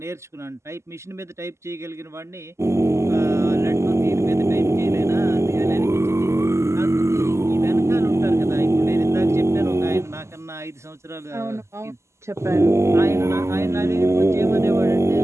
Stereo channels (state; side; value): late; left; 0.13 ms